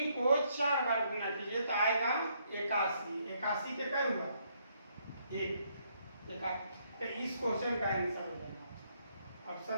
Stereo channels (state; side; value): inverted; both; correlation -0.72